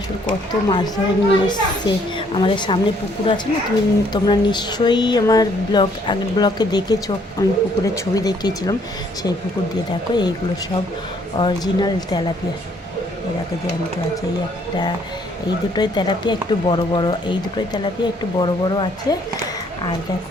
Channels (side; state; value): both; normal; correlation 0.65